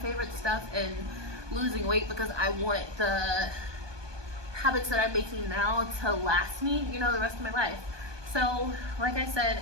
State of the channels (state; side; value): late; left; 1.2 ms